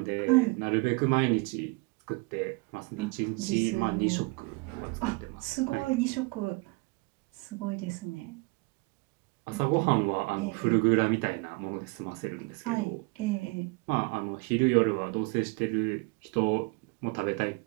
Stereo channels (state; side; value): quieter; left; 28.0 dB